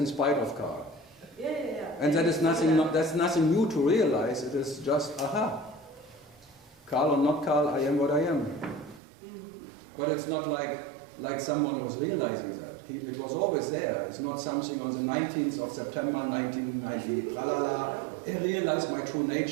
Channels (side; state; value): left; drops out; at 9.0 s